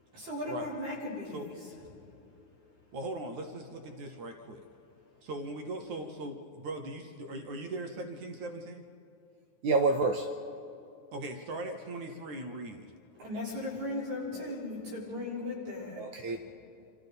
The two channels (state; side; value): late; left; 9.5 ms